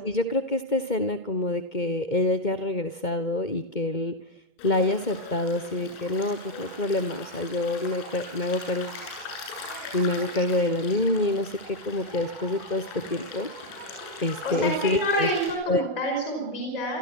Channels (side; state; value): right; late; 2.2 ms